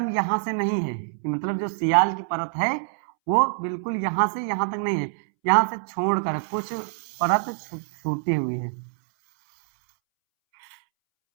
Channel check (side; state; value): left; silent; 62 dB below the other